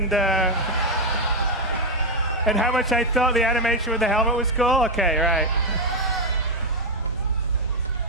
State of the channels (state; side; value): normal; both; correlation 0.02